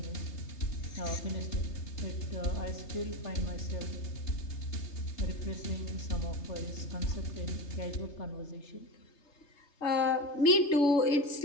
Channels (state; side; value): late; right; 3.3 ms